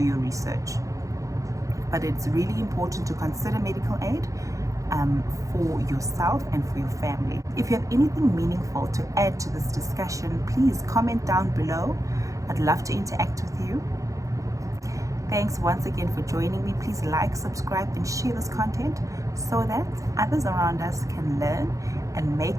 research. But it's really important to consider medical aid for yourself and for your family. If you have anything meaningful to add to this discussion, please comment down below. I'd love to interact with you. Thanks once again for joining me. Please like, subscribe, and share this content so that others around us can learn and make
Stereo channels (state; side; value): late; left; 0.16 ms